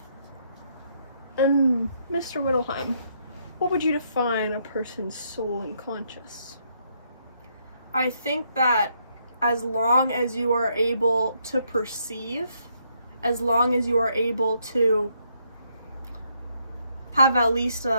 And Mr. Whittleheim, what would you define a person's soul and conscious? I think that as long as you are able to perceive, as long as you are able to have at least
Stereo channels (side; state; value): both; inverted; correlation -0.74